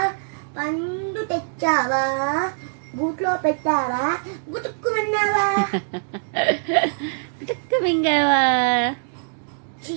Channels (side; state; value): left; silent; digital silence